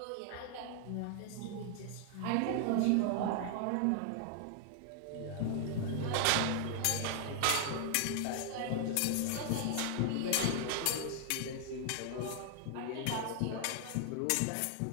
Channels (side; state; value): both; different; correlation 0.00